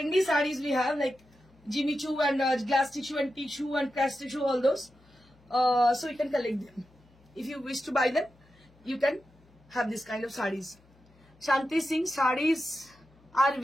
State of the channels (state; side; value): noise; left; hum, 29 dB below the sound